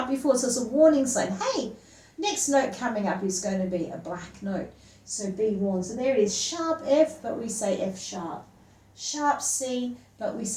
before, so it's a warning sign. Hey, next note coming up is going to be a black note. So be warned. So there it is, sharp F, but we say F sharp. Sharp C, but we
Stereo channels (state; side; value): identical; both; correlation 1.00